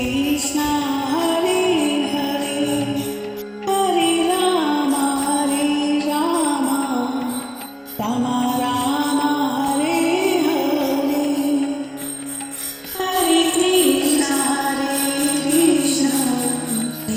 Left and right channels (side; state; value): both; identical; correlation 1.00